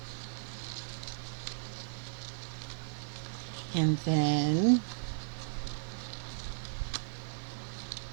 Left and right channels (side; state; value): left; silent; digital silence